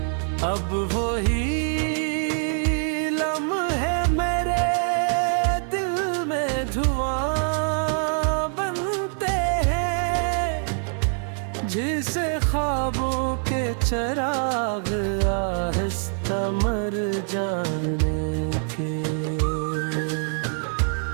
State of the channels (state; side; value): silent; left; 59 dB below the other